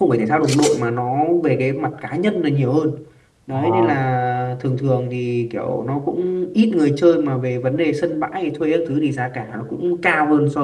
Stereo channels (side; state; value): both; identical; correlation 1.00